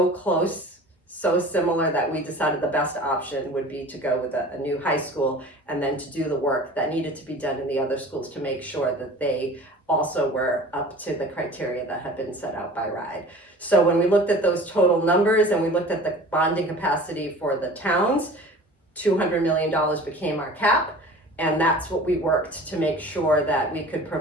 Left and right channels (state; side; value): normal; both; correlation 0.41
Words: close, so similar, that we decided the best option would be to go with a new high school and then to do the work that needed to be done in the other schools to make sure that they also were up to the criteria that had been set out by RIDE. So when we looked at those total numbers and we looked at the bonding capacity for the towns, $200 million became our cap. And that's what we worked to make sure that we could